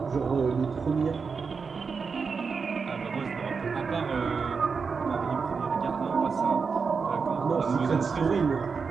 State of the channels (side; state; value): left; quieter; 5.3 dB